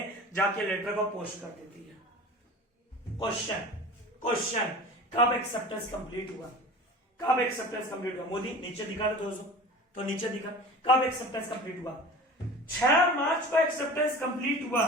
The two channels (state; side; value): normal; both; correlation 0.38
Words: जाके लेटर को पोस्ट कर देती है। क्वेश्चन, कब एक्सेप्टेंस कंप्लीट हुआ? कब एक्सेप्टेंस कंप्लीट हुआ? मोदी नीचे दिखा दो दोस्तों, तो नीचे दिखा कब एक्सेप्टेंस कंप्लीट हुआ। 6 मार्च को एक्सेप्टेंस कंप्लीट हुआ